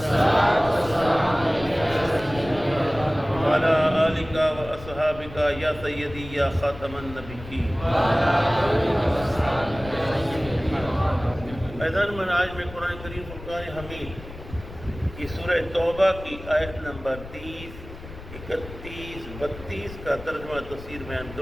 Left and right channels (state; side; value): noise; left; rumble, 14 dB below the sound